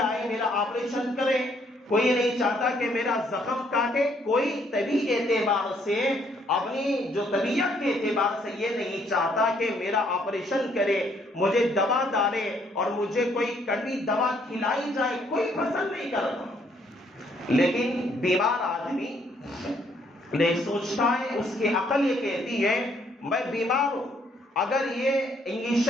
آئے میرا آپریشن کرے، کوئی نہیں چاہتا کہ میرا زخم کاٹے، کوئی طبی اعتبار سے، اپنی جو طبیعت کے اعتبار سے یہ نہیں چاہتا کہ میرا آپریشن کرے، مجھے دوا ڈالے اور مجھے کوئی کڑوی دوا کھلائی جائے، کوئی پسند نہیں کرتا۔ لیکن بیمار آدمی نہیں سوچتا ہے، اس کی عقل یہ کہتی ہے میں بیمار ہوں، اگر یہ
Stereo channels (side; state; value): both; normal; correlation 0.68